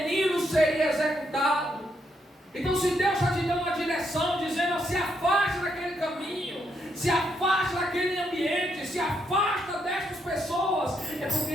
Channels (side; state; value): both; normal; correlation 0.77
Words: seria executado. Então, se Deus está te dando uma direção, dizendo: se afaste daquele caminho, se afaste daquele ambiente, se afasta destas pessoas, é porque